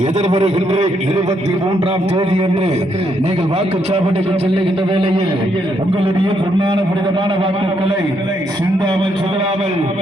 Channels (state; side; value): normal; both; correlation 0.75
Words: எதிர்வருகின்ற 23ஆம் தேதி என்று நீங்கள் வாக்குச்சாவடிக்கு செல்லுகின்ற வேளையில் உங்களுடைய பொன்னான புனிதமான வாக்குகளை சிந்தாமல் சிதறாமல்